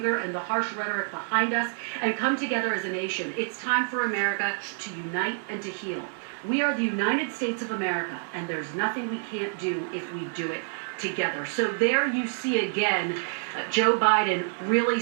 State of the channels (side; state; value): left; silent; 60 dB below the other